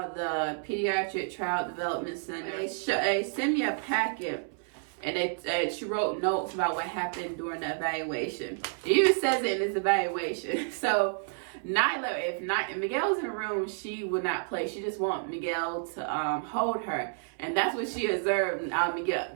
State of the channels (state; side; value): silent; left; 58 dB below the other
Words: the Pediatric Child Development Center. They sent me a packet, and she wrote notes about what happened during the evaluation. It even says it in this evaluation. So Nyla, if Miguel's in the room, she would not play. She just want Miguel to hold her, and that's what she observed.